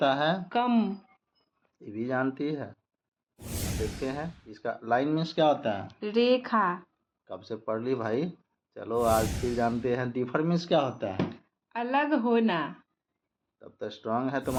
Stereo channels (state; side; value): identical; both; correlation 1.00